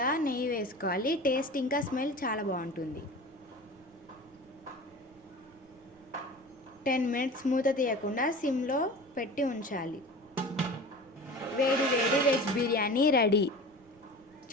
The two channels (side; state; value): right; noise; rumble, 30 dB below the sound